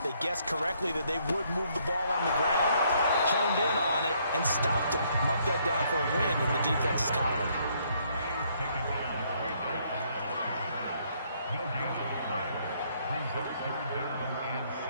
They guessed correctly that they would move the ball on the ground, honed in on it, and stopped him. Mark that down for a win in the defense's column.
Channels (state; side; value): inverted; both; correlation -0.68